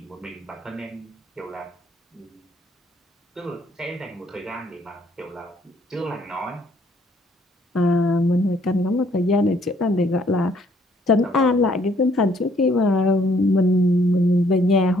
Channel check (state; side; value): normal; both; correlation 0.65